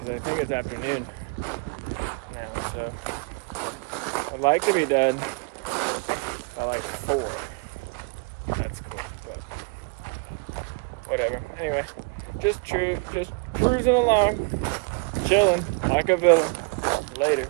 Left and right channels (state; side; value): quieter; left; 32.6 dB